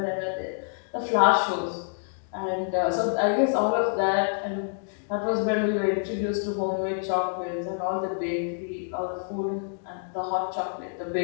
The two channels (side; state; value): right; silent; digital silence